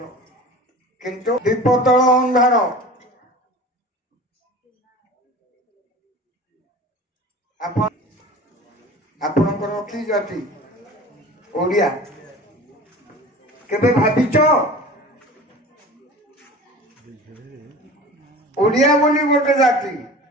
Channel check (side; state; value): both; normal; correlation 0.39